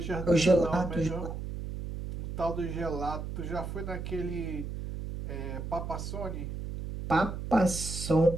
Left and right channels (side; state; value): right; noise; hum, 6 dB below the sound